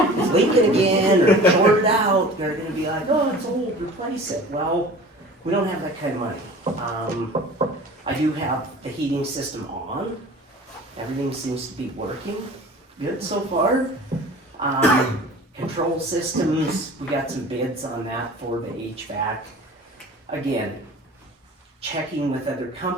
it's leaking again, or shorted out. They're gonna be like, oh, it's old, replace it. Well, we don't have that kind of money. I do have the heating system on. Everything seems to be working good so far. Control systems, we got some bids on that for the HVAC. Again, checking with other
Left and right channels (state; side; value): normal; both; correlation 0.42